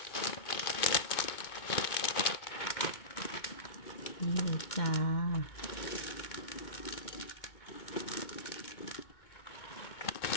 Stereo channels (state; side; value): late; right; 2.2 ms